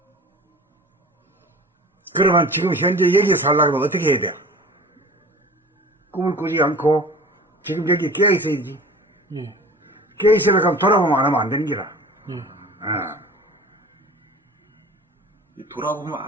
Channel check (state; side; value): normal; both; correlation 0.41